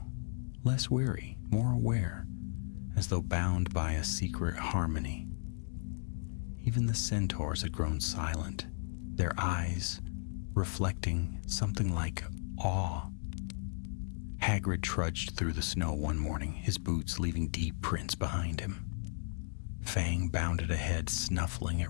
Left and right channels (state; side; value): silent; right; digital silence